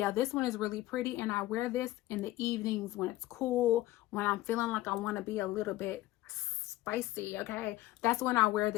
this one is really pretty, and I wear this in the evenings when it's cool, when I'm feeling like I want to be a little bit spicy, okay? That's when I wear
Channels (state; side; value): quieter; right; 16.6 dB